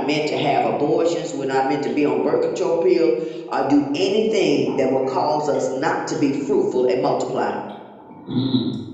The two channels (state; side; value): identical; both; correlation 1.00